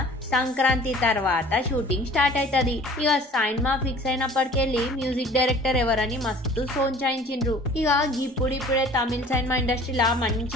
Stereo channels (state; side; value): normal; both; correlation 0.47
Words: సంక్రాంతి తర్వాత షూటింగ్ స్టార్ట్ అవుతుంది. ఇక సినిమా ఫిక్స్ అయినప్పటికెళ్ళి మ్యూజిక్ డైరెక్టర్ ఎవరని మస్తు సోంచాయించిండ్రు. ఇక ఇప్పుడిప్పుడే తమిళ సినిమా ఇండస్ట్రీలా